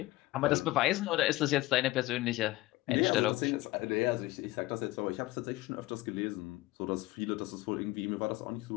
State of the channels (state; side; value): quieter; right; 18.6 dB